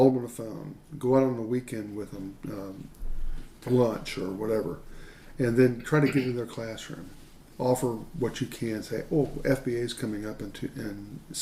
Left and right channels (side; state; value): both; identical; correlation 1.00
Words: them on the phone. Go out on the weekend with them, lunch or whatever, and then try to get in their classroom. Offer what you can. Say, oh, FBA is coming up in